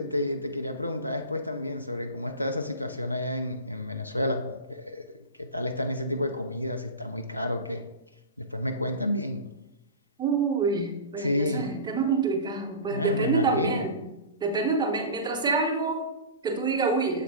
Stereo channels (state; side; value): inverted; both; correlation -0.32